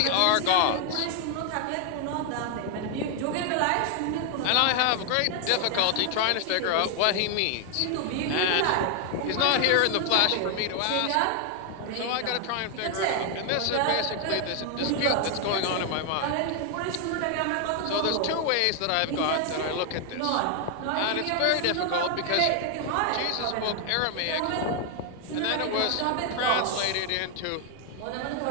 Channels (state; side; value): different; both; correlation 0.00